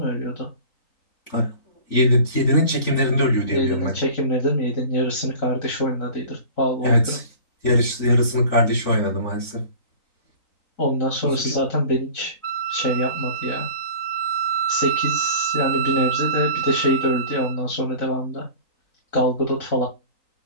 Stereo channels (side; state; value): right; late; 3.9 ms